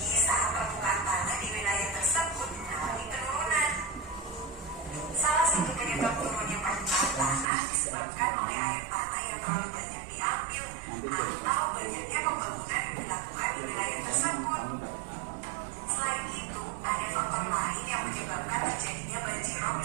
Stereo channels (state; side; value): drops out; left; at 7.5 s